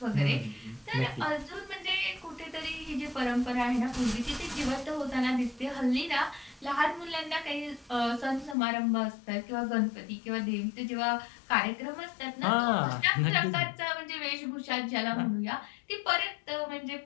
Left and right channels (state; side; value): drops out; right; at 8.6 s